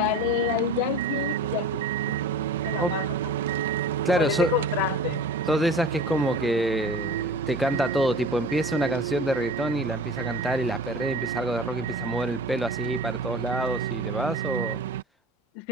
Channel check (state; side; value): normal; both; correlation 0.38